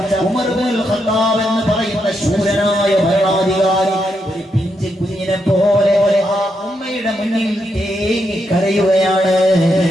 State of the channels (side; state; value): both; normal; correlation 0.81